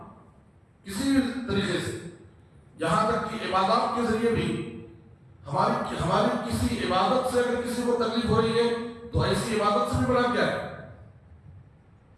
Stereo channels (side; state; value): both; identical; correlation 1.00